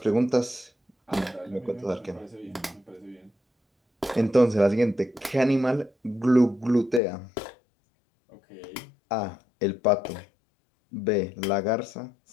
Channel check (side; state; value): right; drops out; at 7.0 s